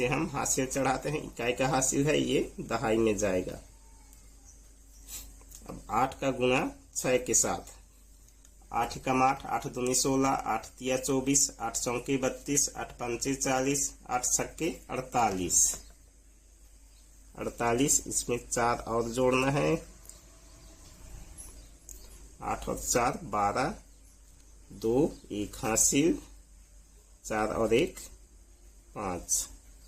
हम हासिल चढ़ाते हैं। इकाई का हासिल है, ये दहाई में जाएगा। अब 8 का गुणा 6 के साथ 8 एकम 8 8 दूनी 16 8 तिया 24 8 चौके 32 8 पंचे 40 8 छक्के 48। 48 इसमें 4 और जोड़ना है। 8 और 4 12 2 1 हासिल 4 और 1 5।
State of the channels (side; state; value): both; identical; correlation 1.00